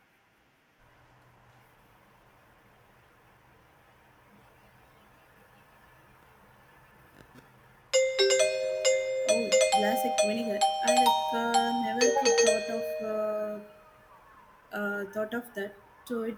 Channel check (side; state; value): both; identical; correlation 1.00